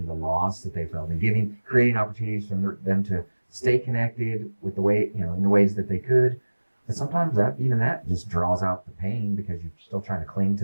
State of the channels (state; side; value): inverted; both; correlation -1.00